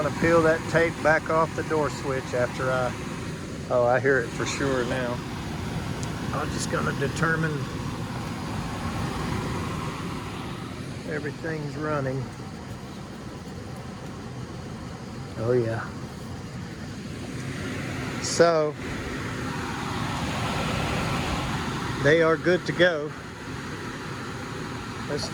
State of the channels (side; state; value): both; identical; correlation 1.00